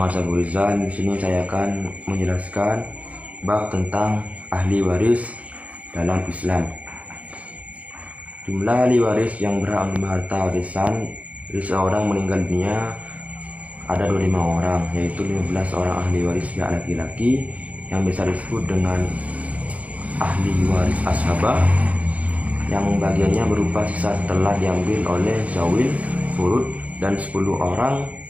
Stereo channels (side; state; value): left; late; 0.068 ms